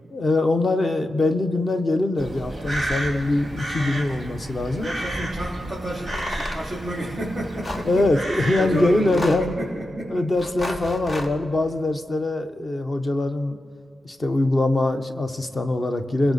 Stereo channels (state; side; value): normal; both; correlation 0.90